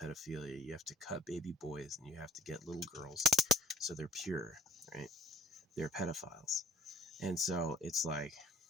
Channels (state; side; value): normal; both; correlation 0.51